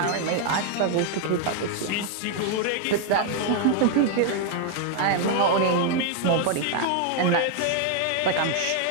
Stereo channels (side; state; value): both; different; correlation 0.00